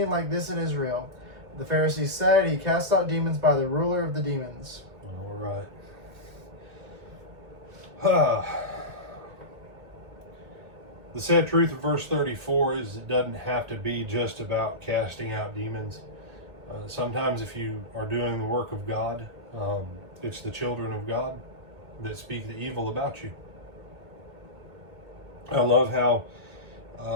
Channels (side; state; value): left; late; 1.8 ms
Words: like this in Israel. The Pharisees said, He cast out demons by the ruler of the demons. All right. The sad truth of verse 34 is it doesn't have to be just about casting out demons. Sometimes if you are doing the work of God, it's the children of God that speak the evil about you. I love how